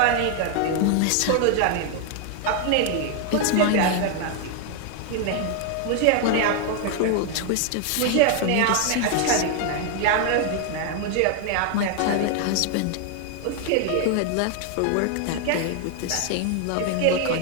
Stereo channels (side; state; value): both; different; correlation 0.00